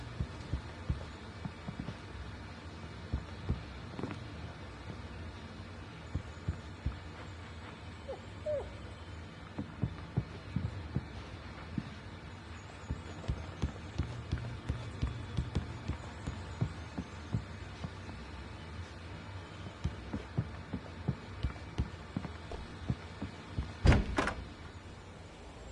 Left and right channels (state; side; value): identical; both; correlation 1.00